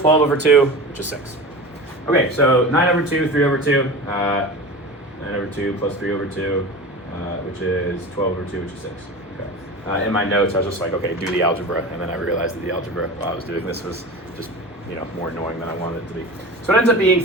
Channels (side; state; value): both; normal; correlation 0.32